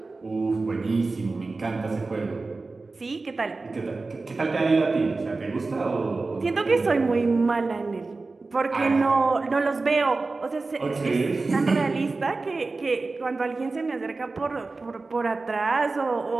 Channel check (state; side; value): quieter; left; 3.7 dB